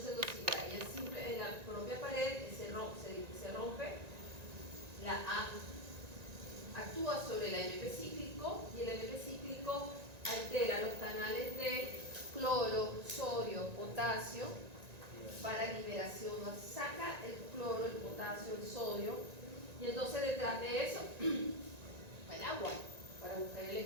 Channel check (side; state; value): left; late; 1.9 ms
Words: se endocida, ella simple en la propia pared se rompe, la A actúa sobre el AMP cíclico y el AMP cíclico altera los canales de cloro, sodio, potasio para liberación, saca el cloro, el potasio, el sodio, y entonces detrás de eso el agua para buscar el